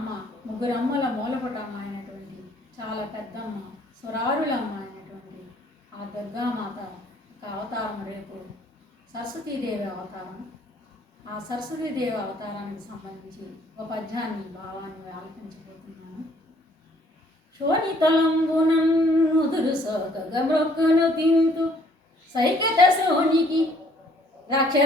ముగ్గురు అమ్మల మూలపుటమ్మ అయినటువంటి చాలా పెద్దమ్మ, సురారులమ్మ అయినటువంటి ఆ దుర్గామాత ఒక అవతారం రేపు సరస్వతీదేవి అవతారం. ఆ సరస్వతీదేవి అవతారానికి సంబంధించి ఒక పద్యాన్ని భావాన్ని ఆలపించబోతున్నాను. శోణితలంబునన్నుదురు సోకగ మ్రొక్కును తింతు సైకత శోనికి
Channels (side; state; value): both; normal; correlation 0.61